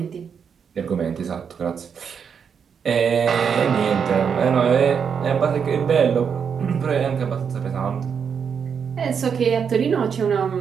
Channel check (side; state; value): left; quieter; 6.9 dB